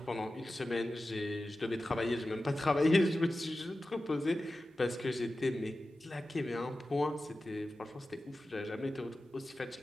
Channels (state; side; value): normal; both; correlation 0.94